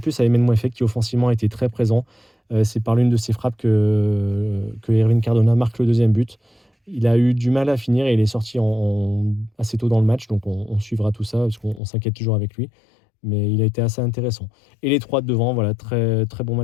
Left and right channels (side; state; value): right; drops out; at 11.8 s